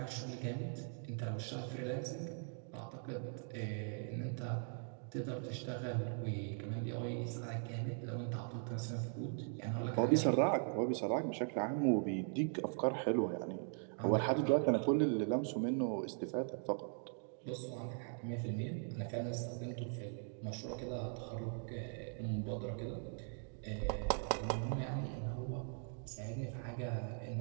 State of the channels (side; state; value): left; silent; 51 dB below the other